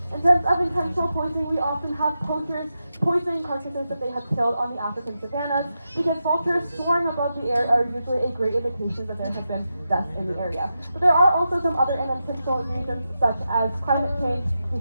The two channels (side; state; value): both; inverted; correlation -0.88